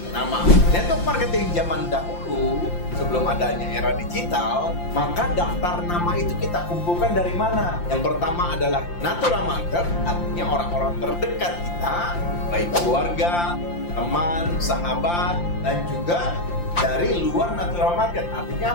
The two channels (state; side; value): late; right; 5.8 ms